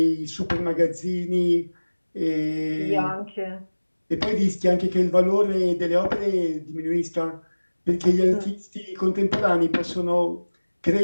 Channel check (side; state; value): both; inverted; correlation -1.00